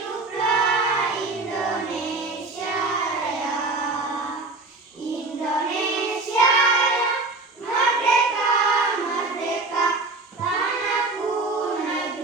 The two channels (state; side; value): quieter; left; 3.3 dB